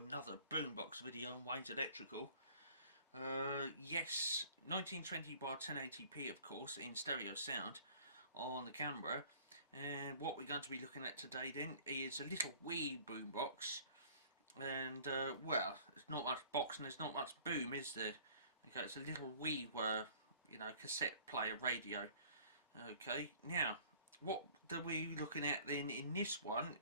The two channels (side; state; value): both; inverted; correlation -0.51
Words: boombox video on Wayne's Electrical. Yes, 1920 by 1080p of course in stereo sound on the camera. And what we're going to be looking at today then is a little wee boombox. And well, there's not much box and there's not much boom, is there? Okay, it's a little wee cassette player radio. Okay, now what are we looking at then in this one